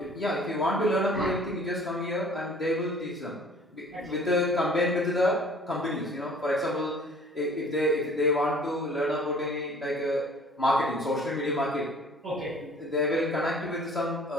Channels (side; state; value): both; normal; correlation 0.51